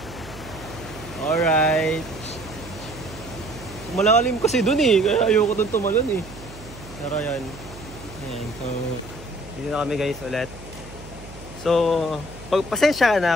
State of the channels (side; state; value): right; noise; hum, 16 dB below the sound